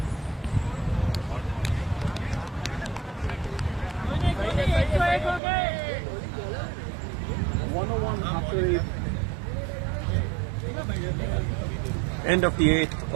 End of the 8th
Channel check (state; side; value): drops out; left; at 5.4 s